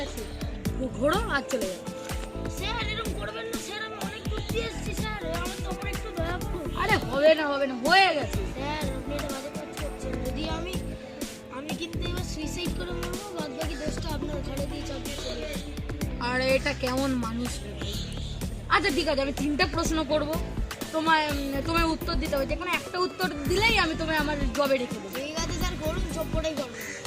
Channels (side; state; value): both; identical; correlation 1.00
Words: ঘোরো আর চলে যাও। স্যার এরকম করবেন না স্যার, আমি অনেক দূর দিয়ে এসেছি স্যার, আমার তো আমার একটু দয়া করুন। আরে হবে না হয়ে গেছে। স্যার আপনি এটা বাজে কাজ করছেন, যদি আমি কিন্তু এবার সুইসাইড করে মরবো, বাদ বাকি দোষটা আপনার ঘরে দিয়ে চাপিয়ে চলে যাবো। আর এটা কেমন মানুষ রে ভাই। আচ্ছা ঠিক আছে, আমি 3টা প্রশ্ন করব, তোমার উত্তর দিতে হবে, যে কোনো একটা উত্তর দিলেই আমি তোমায় আমার জবে রেখে দেবো। ঠিক আছে স্যার, করুন, সবটাই করুন।